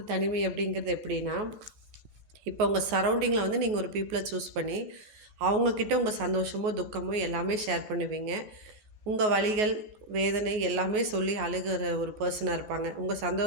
தனிமை அப்படிங்கிறது எப்படின்னா, இப்போ உங்கள் சரௌண்டிங்கில் நீங்கள் ஒரு பீப்புளை சூஸ் பண்ணி அவங்கக்கிட்ட உங்கள் சந்தோஷமோ துக்கமோ எல்லாமே ஷேர் பண்ணுவீங்க. உங்கள் வலிகள் வேதனை எல்லாமே சொல்லி அழுகிற ஒரு பர்சனாக இருப்பாங்க. உங்கள்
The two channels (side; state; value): left; late; 14 ms